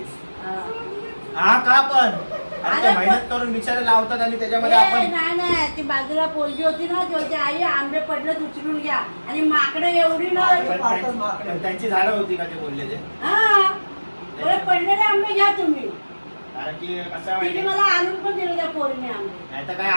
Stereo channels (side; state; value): both; inverted; correlation -1.00